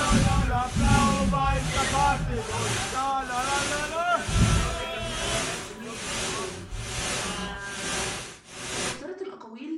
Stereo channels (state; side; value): identical; both; correlation 1.00